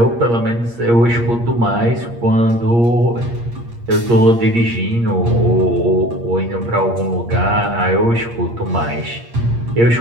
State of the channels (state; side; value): late; left; 8.6 ms